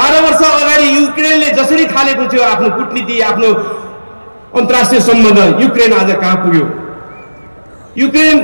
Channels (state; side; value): inverted; both; correlation -1.00